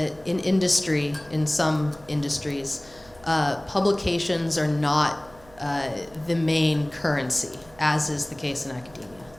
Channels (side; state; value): right; noise; hum, 25 dB below the sound